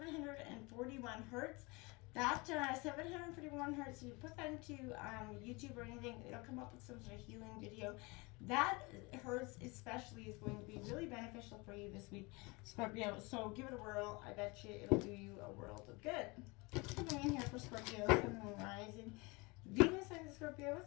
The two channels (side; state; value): right; quieter; 26.3 dB